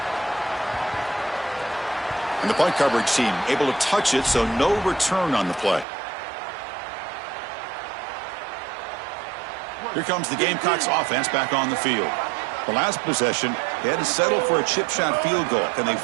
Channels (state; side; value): drops out; left; at 5.9 s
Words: And the punt coverage team able to touch it, so no return on the play. Here comes the Gamecocks offense back on the field. The last possession, they had to settle for a chip shot field goal. Can they